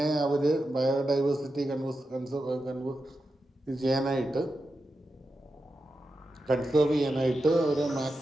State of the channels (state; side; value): normal; both; correlation 0.89